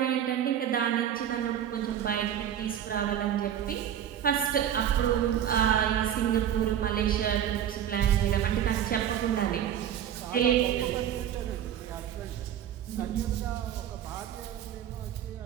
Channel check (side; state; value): left; quieter; 10.1 dB